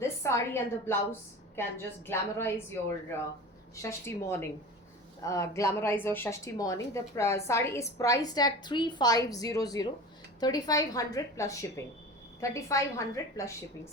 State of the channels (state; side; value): normal; both; correlation 0.35